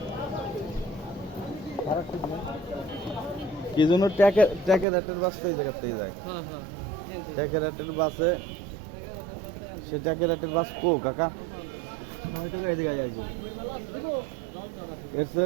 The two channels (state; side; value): drops out; left; at 4.9 s